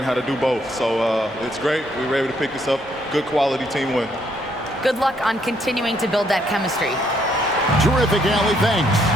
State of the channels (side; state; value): both; normal; correlation 0.71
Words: how to do both. So it's great. We were able to pick this up. Good quality team win. Good luck on continuing to build that chemistry. Terrific, Allie. Thanks.